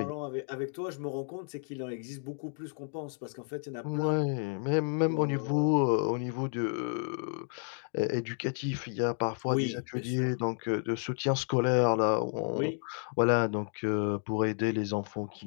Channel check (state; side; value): silent; right; 57 dB below the other